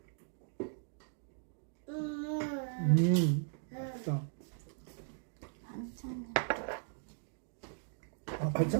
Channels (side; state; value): left; silent; digital silence